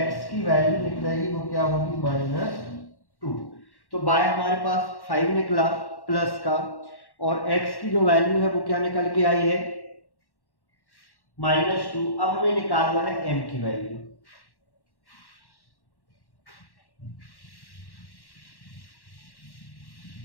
की वैल्यू निकलेगी वो क्या होगी -2। तो बाय हमारे पास 5 निकला प्लस का, और x की जो वैल्यू है वो क्या निकल के आई है -2। अब हमें निकालना है m की value.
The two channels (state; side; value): late; right; 1.1 ms